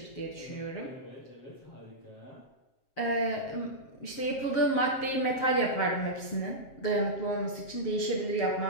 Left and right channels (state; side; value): late; right; 7.5 ms